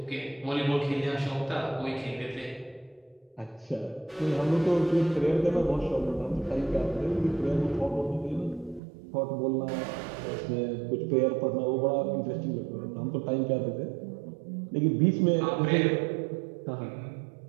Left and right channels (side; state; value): left; drops out; at 8.8 s